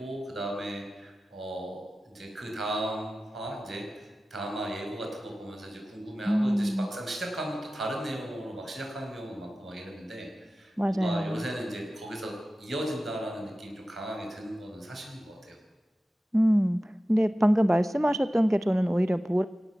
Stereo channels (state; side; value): normal; both; correlation 0.95